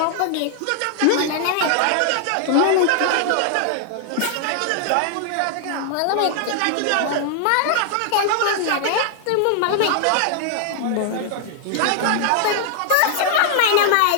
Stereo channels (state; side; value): different; both; correlation 0.00